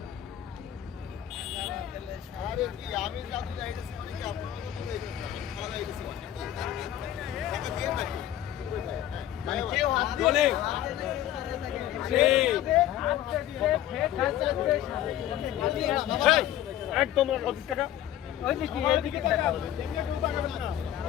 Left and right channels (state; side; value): quieter; right; 12.2 dB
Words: আরে কি আমি জাদু যাইতেছি মানে কি আপনারা তো যাইতেছেন আমি খালা যাইতেছি টাকা দিয়ে নাকি মানে কেউ হাত বলে একদম 25 টাকা